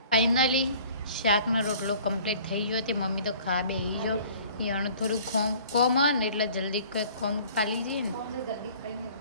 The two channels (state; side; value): inverted; both; correlation -0.51